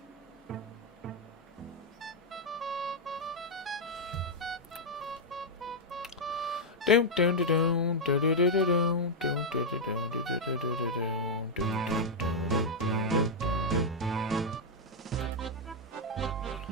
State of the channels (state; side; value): normal; both; correlation -0.02